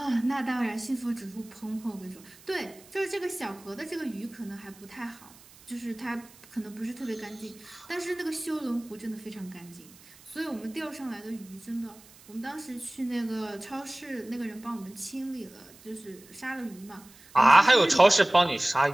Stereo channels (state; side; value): noise; right; hiss, 23 dB below the sound